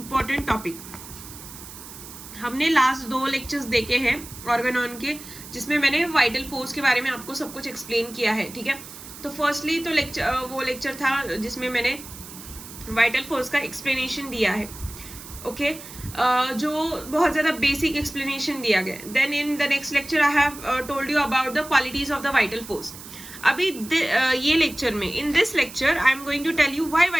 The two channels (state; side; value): noise; right; hiss, 15 dB below the sound